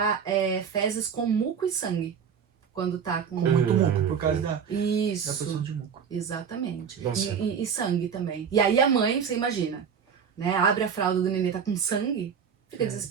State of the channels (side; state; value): left; quieter; 7.1 dB